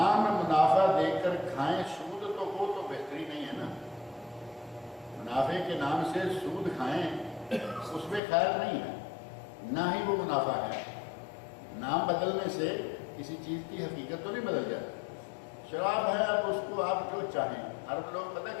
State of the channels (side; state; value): right; drops out; at 8.2 s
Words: منافع دے کر کھائیں سود تو وہ تو بہتری نہیں ہے نا، منافع کے نام سے سود کھائیں اس میں خیر نہیں ہے، نہ ہی وہ منافع ہے۔ نام بدلنے سے کسی چیز کی حقیقت تو نہیں بدل جاتی۔ شراب ہے، اب اس کو آپ جو چاہیں، عرب لوگ پتہ